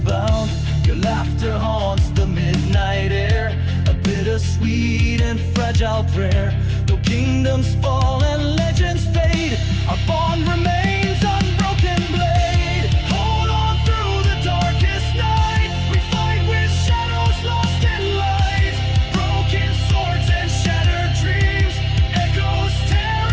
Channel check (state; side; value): identical; both; correlation 1.00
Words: bound. Your laughter haunts the midnight air, a bittersweet and fragile prayer. Though kingdoms fall and legends fade, our bond remains unbroken blade. Hold on through the darkest night, we fight with shadows lost in light. Broken swords and shattered dreams, echoes